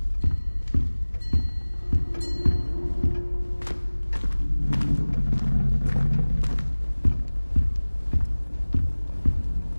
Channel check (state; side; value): inverted; both; correlation -1.00